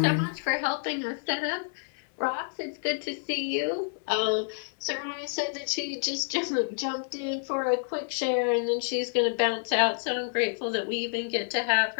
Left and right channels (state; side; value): silent; right; 59 dB below the other